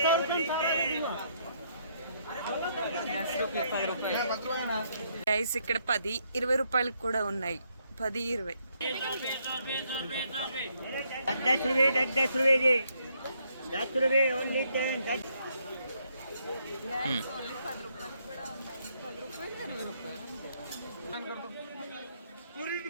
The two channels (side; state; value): both; inverted; correlation -0.72